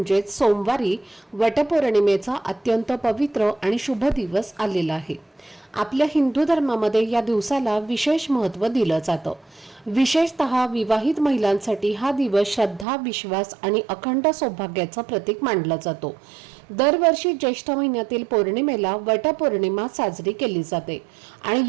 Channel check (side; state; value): left; drops out; at 12.9 s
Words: सोमवारी वटपौर्णिमेचा अत्यंत पवित्र आणि शुभ दिवस आलेला आहे. आपल्या हिंदू धर्मामध्ये या दिवसाला विशेष महत्त्व दिलं जातं. विशेषतः विवाहित महिलांसाठी हा दिवस श्रद्धा, विश्वास आणि अखंड सौभाग्याचं प्रतीक मानला जातो. दरवर्षी ज्येष्ठ महिन्यातील पौर्णिमेला वटपौर्णिमा साजरी केली जाते आणि